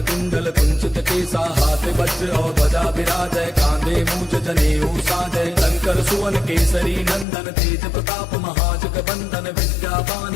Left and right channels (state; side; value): drops out; right; at 7.2 s